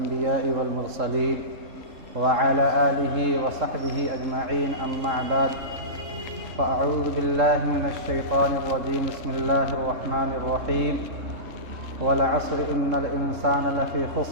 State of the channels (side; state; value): left; late; 3.7 ms